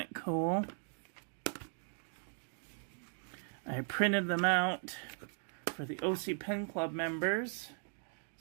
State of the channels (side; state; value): left; silent; 52 dB below the other